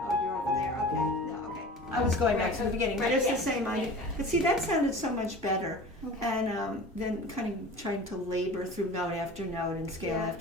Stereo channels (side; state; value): both; normal; correlation 0.38